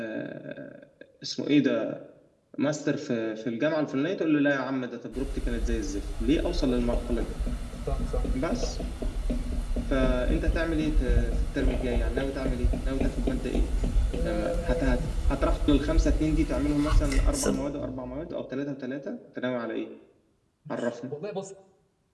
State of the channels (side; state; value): both; identical; correlation 1.00